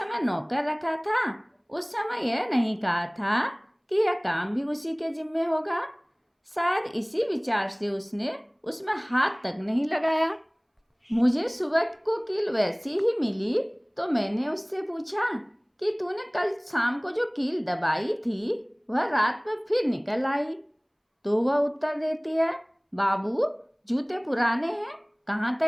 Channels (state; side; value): identical; both; correlation 1.00